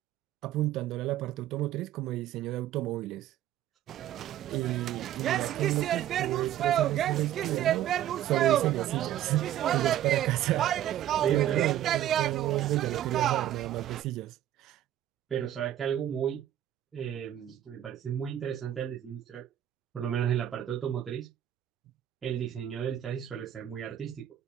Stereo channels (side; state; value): left; quieter; 12.0 dB